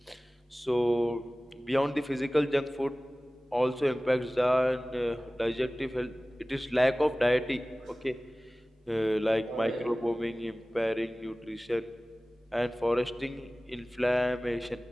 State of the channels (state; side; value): normal; both; correlation 0.98